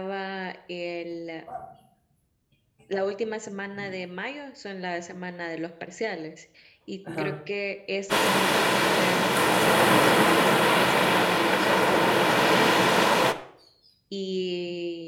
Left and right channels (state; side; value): identical; both; correlation 1.00